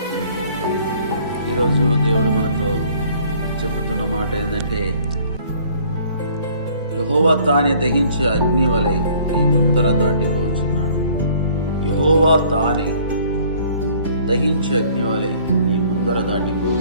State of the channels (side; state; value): both; inverted; correlation -0.57